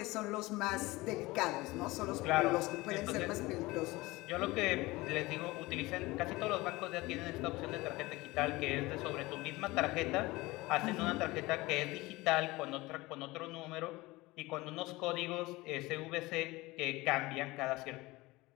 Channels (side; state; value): right; quieter; 20.8 dB